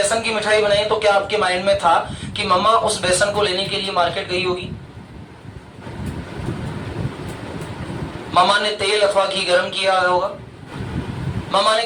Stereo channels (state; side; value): identical; both; correlation 1.00